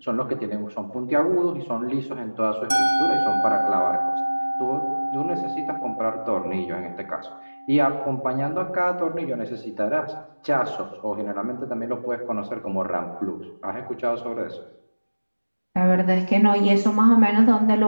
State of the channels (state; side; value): inverted; both; correlation -1.00